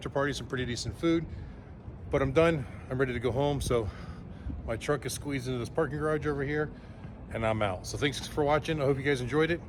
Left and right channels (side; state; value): both; identical; correlation 1.00